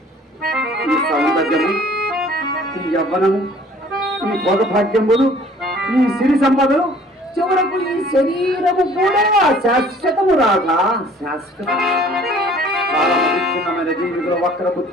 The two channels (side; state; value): both; normal; correlation 0.53